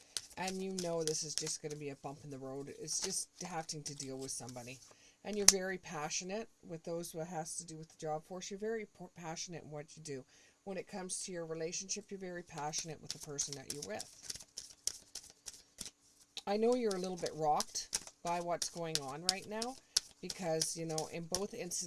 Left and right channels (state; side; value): identical; both; correlation 1.00